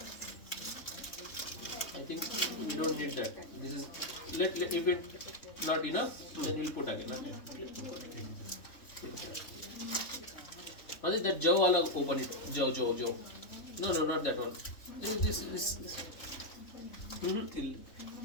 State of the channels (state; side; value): late; right; 3.6 ms